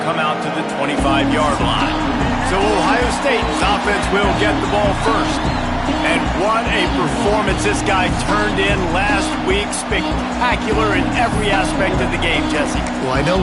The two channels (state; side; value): identical; both; correlation 1.00